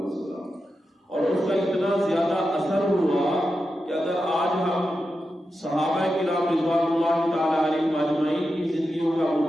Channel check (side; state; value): both; normal; correlation 0.90